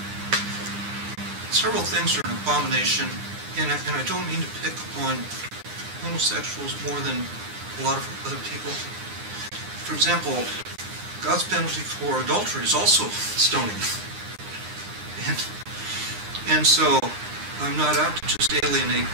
Several things are an abomination, and I don't mean to pick on homosexuals more than a lot of other people. For example, God's penalty for adultery is also stoning. And so I'm not out to just alienate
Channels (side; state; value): left; late; 9.8 ms